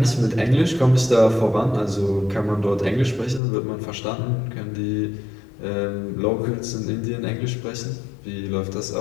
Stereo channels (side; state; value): right; drops out; at 3.4 s